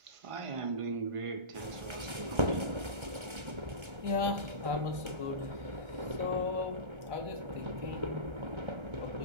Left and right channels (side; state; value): left; late; 1.3 ms